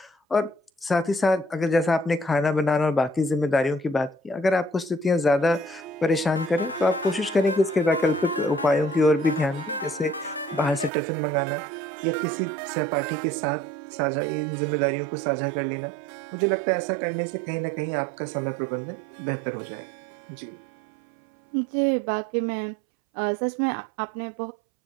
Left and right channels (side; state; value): left; drops out; at 10.9 s